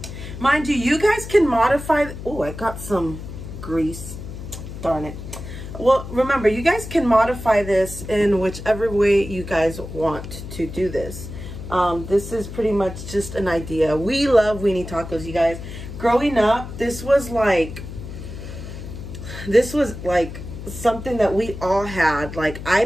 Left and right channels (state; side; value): noise; left; hum, 10 dB below the sound